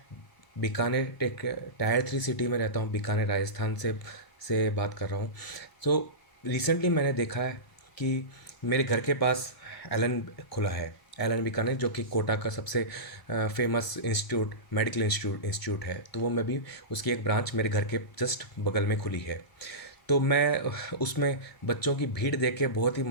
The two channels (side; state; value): right; late; 1.7 ms